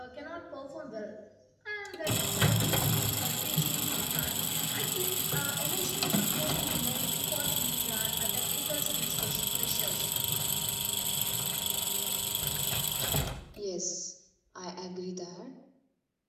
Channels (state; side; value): identical; both; correlation 1.00